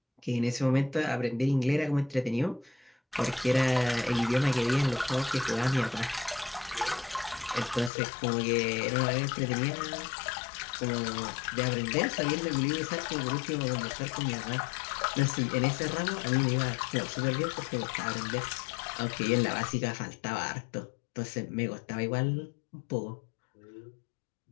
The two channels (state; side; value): drops out; right; at 7.9 s